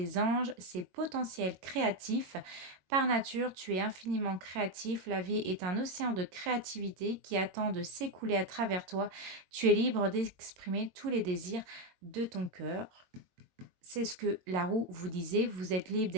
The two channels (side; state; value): left; late; 22 ms